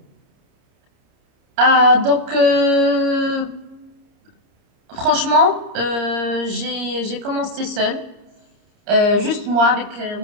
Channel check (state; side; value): late; left; 30 ms